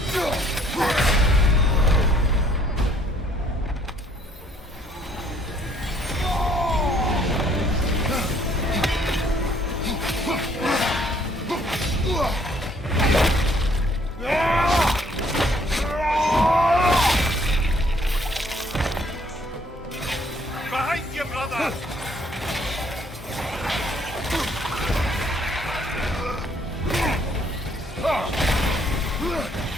behind you, brother!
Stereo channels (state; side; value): normal; both; correlation 0.64